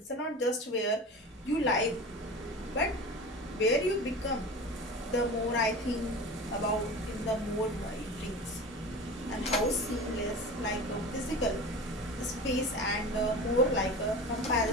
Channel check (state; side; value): normal; both; correlation 0.33